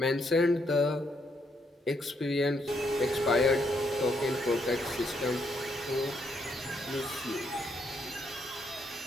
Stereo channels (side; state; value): both; normal; correlation 0.75